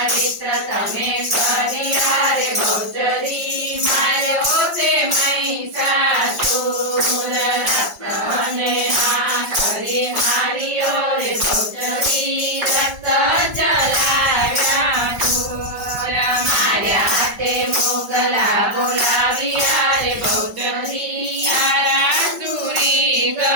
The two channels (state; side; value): late; left; 5.2 ms